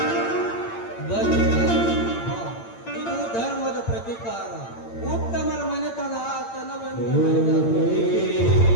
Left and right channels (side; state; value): right; late; 8.8 ms